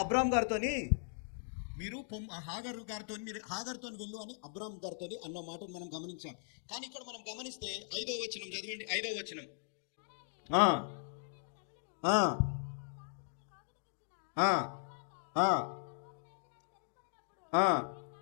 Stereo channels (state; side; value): silent; right; digital silence